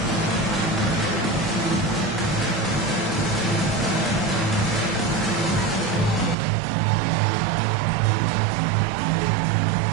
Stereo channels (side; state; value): left; drops out; at 6.4 s